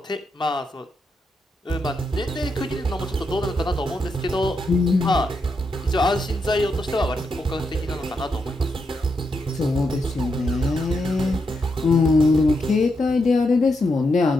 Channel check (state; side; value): normal; both; correlation 0.83